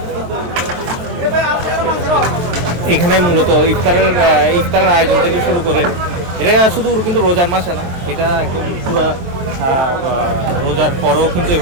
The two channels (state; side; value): late; left; 23 ms